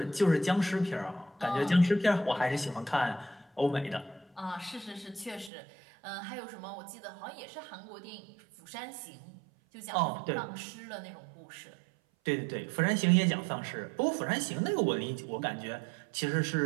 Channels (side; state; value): left; drops out; at 5.5 s